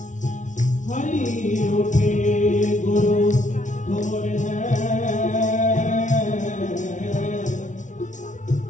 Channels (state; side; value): late; right; 0.37 ms